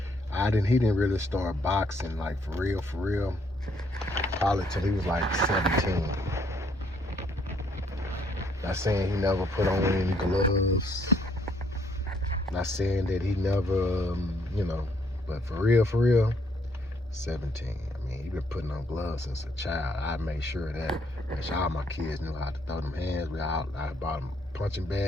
He didn't really start boxing like for real, probably till he was like 17. Not saying he never put on any gloves. Not saying that he never, you know, but for real, 17. I mean, he been putting on gloves since a child. I made sure that all my kids knew how to throw them hands. I bought them a punching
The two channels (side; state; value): both; normal; correlation 0.68